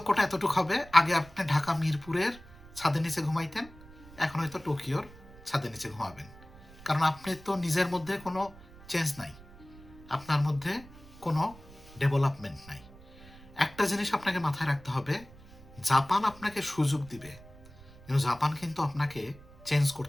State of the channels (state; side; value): noise; right; rumble, 21 dB below the sound